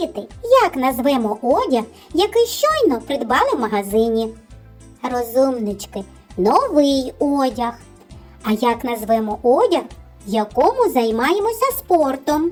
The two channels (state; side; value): identical; both; correlation 1.00